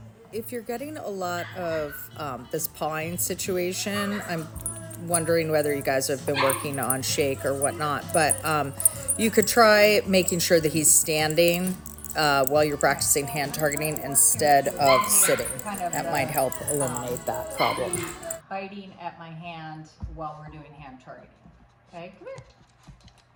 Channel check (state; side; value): identical; both; correlation 1.00